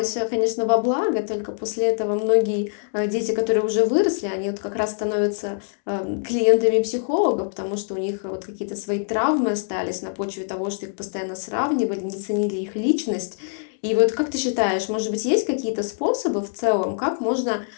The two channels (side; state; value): right; silent; digital silence